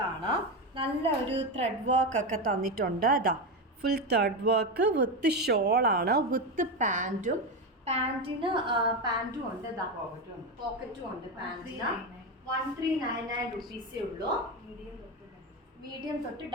നല്ല ഒരു ത്രെഡ് വർക്ക് ഒക്കെ തന്നിട്ടുണ്ട്. ഫുൾ ത്രെഡ് വർക്ക് വിത്ത് ഷോളാണ്, വിത്ത് പാൻറ്റും. പാൻറ്റിന് പാൻറ്റും ഉണ്ട്. പോക്കറ്റും ഉണ്ട് പാൻറ്റിന്. 1399 റുപ്പീസേ ഉള്ളൂ. മീഡിയം തൊട്ട്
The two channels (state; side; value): normal; both; correlation 0.14